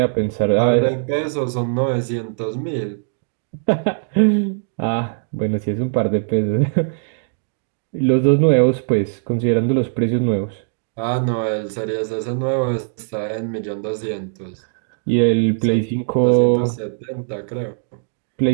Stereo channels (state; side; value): silent; left; digital silence